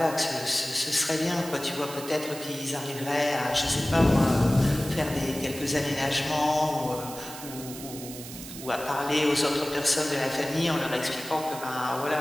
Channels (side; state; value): right; noise; hiss, 12 dB below the sound